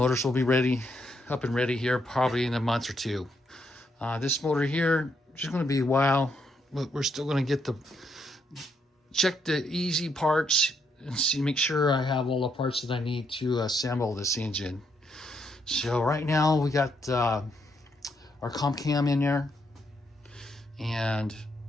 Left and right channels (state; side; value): normal; both; correlation 0.76